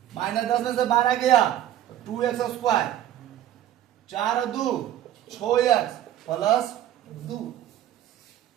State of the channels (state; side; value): quieter; left; 12.0 dB